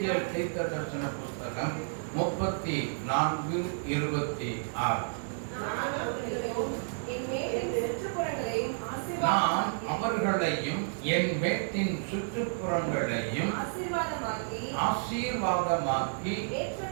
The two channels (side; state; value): left; silent; 57 dB below the other